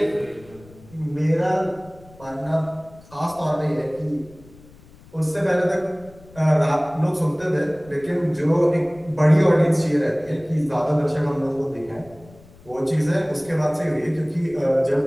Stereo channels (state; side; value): noise; left; rumble, 24 dB below the sound